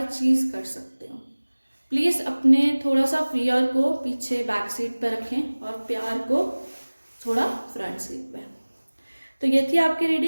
चीज़ कर सकते हो। प्लीज़ अपने थोड़ा सा फियर को पीछे बैक सीट पर रखें और प्यार को थोड़ा फ्रंट सीट पे। तो ये थी आपकी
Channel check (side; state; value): both; inverted; correlation -1.00